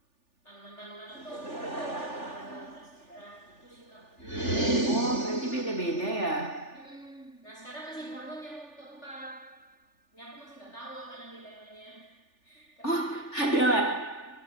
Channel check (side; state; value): right; late; 3.4 ms